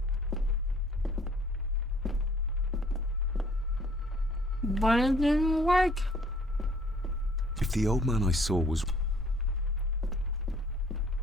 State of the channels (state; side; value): normal; both; correlation 0.58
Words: But it didn't work. If the old man I saw was...